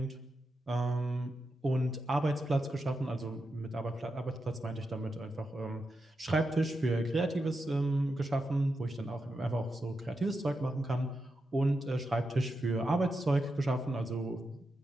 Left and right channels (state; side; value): normal; both; correlation 0.87